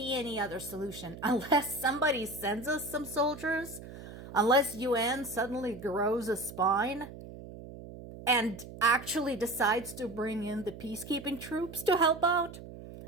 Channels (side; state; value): right; noise; hum, 14 dB below the sound